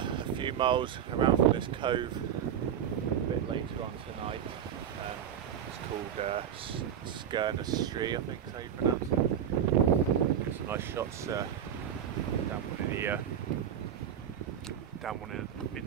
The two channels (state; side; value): quieter; left; 9.2 dB